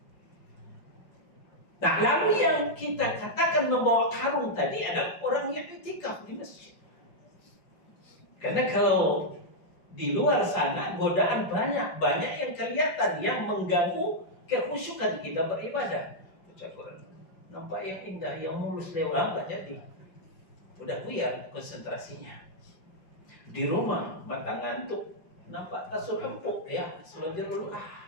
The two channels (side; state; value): right; late; 5.4 ms